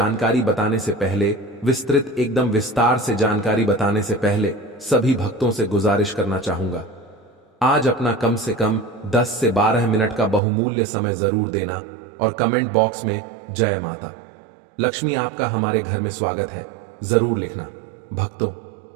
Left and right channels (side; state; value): left; drops out; at 10.4 s